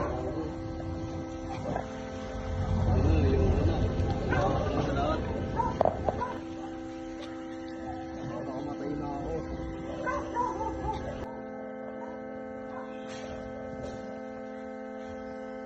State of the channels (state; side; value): identical; both; correlation 1.00